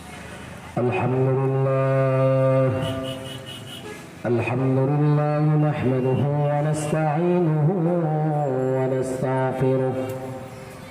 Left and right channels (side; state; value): both; identical; correlation 1.00